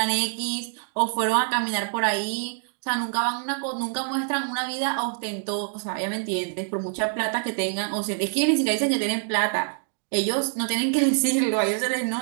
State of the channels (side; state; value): left; silent; 61 dB below the other